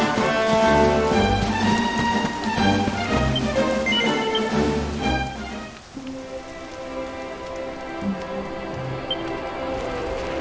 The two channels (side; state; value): both; identical; correlation 1.00